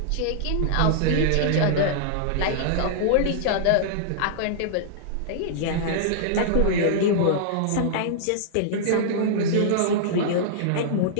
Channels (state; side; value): different; both; correlation -0.02